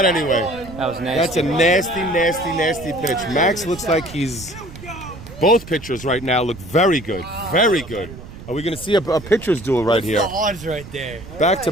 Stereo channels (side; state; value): right; noise; rumble, 15 dB below the sound